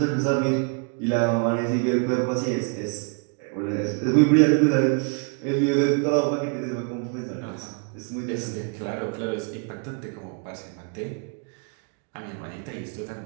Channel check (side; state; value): left; quieter; 37.4 dB